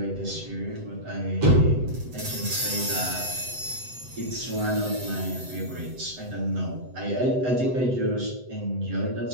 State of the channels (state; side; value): late; left; 7.9 ms